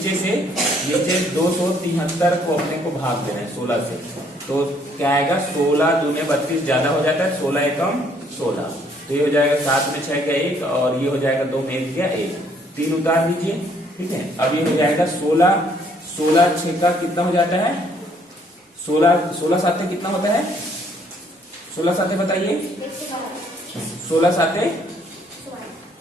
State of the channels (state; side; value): normal; both; correlation 0.65